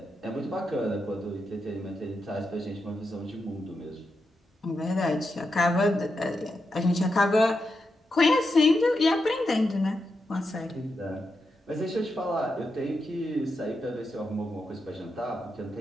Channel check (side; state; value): both; normal; correlation 0.86